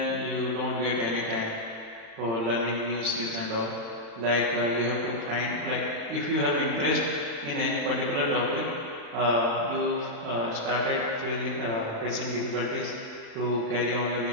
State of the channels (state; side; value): late; left; 35 ms